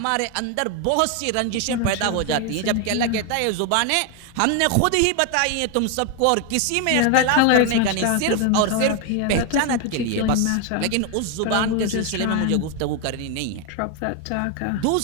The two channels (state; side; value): different; both; correlation 0.01